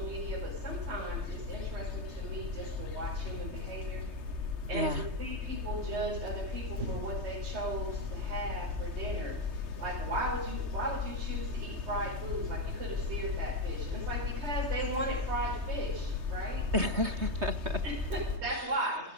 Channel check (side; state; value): left; late; 3.2 ms